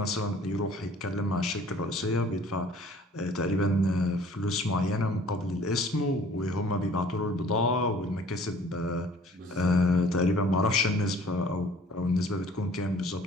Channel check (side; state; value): both; normal; correlation 0.53